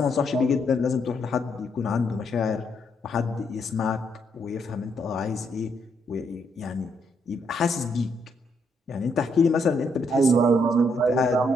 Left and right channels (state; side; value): normal; both; correlation 0.75